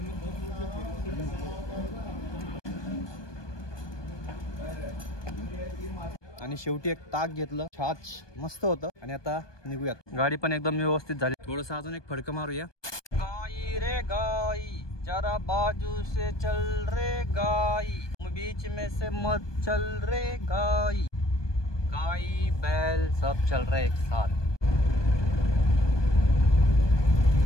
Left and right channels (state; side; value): late; right; 1.2 ms